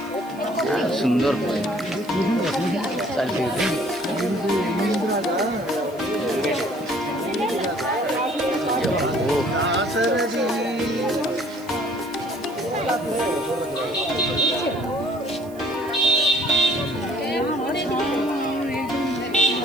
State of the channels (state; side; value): noise; right; hiss, 24 dB below the sound